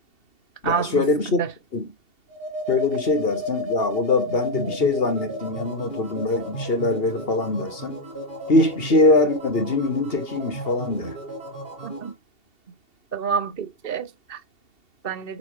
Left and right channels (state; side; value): late; right; 2.8 ms